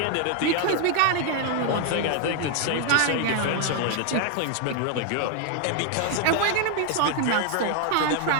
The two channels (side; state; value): both; different; correlation 0.00